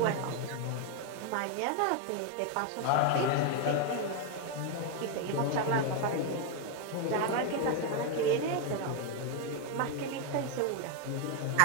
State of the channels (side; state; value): both; different; correlation 0.01